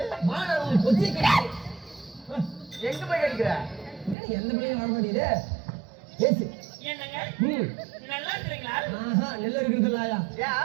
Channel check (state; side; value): drops out; left; at 4.2 s